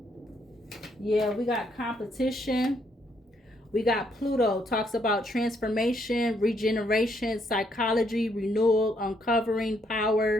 Yeah, we got competition. We got Pluto, talks about transformation, regeneration, psychology, renewal, uncovering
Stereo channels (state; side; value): normal; both; correlation 0.73